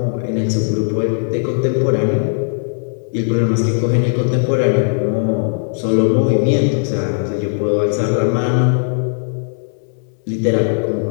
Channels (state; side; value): silent; right; 68 dB below the other